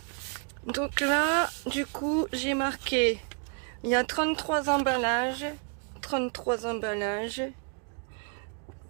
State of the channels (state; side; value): quieter; left; 39.0 dB